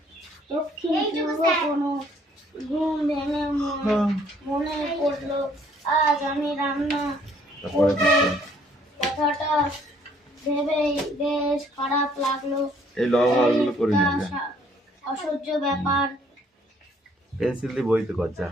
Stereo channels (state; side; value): normal; both; correlation 0.62